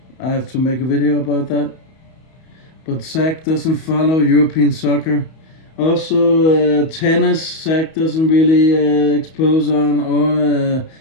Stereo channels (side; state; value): right; late; 31 ms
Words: I have to make a video about that. But Zach doesn't follow European soccer. Also, tennis, Zach doesn't really expose on, or